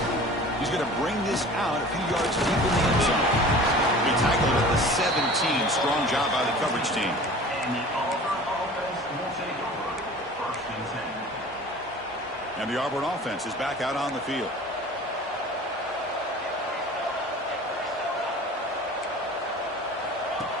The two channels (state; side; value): normal; both; correlation 0.42